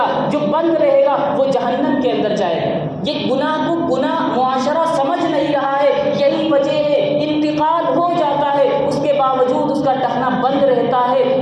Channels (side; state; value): both; identical; correlation 1.00